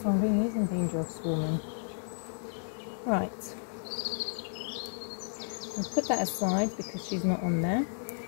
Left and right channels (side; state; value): right; silent; digital silence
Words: one really is in danger of swarming. Right. We'll put that aside because she's not on there.